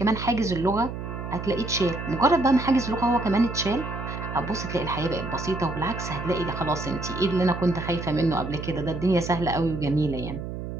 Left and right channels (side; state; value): right; noise; hum, 7 dB below the sound